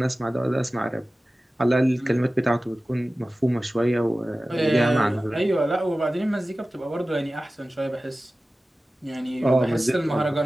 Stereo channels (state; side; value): normal; both; correlation 0.96